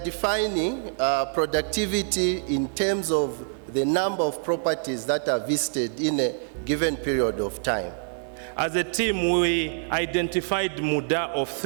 productivity in terms of the number of properties that are visited in a given period of time. As a team, we identified muda of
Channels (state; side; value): silent; left; 61 dB below the other